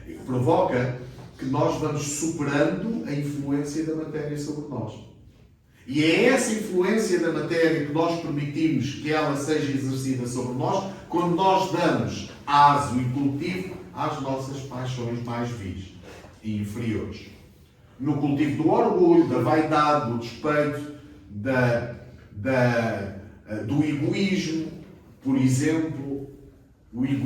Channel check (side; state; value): both; identical; correlation 1.00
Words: Provoca que nós vamos superando a influência da matéria sobre nós. E é essa influência da matéria que nós permitimos que ela seja exercida sobre nós quando nós damos aso e cultivo às nossas paixões mais vis e inferiores. No cultivo do orgulho, da vaidade, do despeito, do egoísmo, por exemplo, o